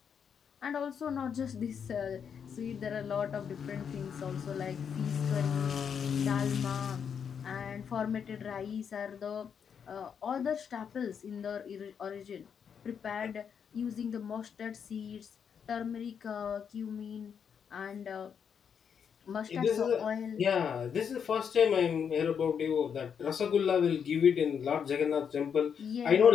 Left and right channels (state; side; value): quieter; right; 7.3 dB